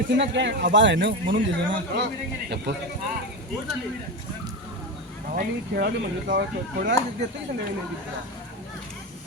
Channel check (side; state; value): both; normal; correlation 0.19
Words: काय आबाळ आहे ना म्हणून दिले ना खेळाडू म्हणजे थोड्या देते